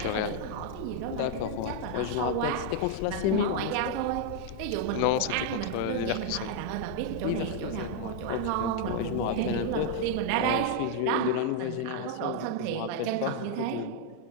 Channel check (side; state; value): both; different; correlation 0.00